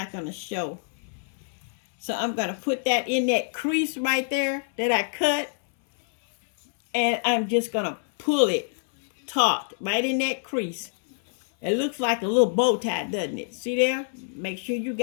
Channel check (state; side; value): silent; right; 59 dB below the other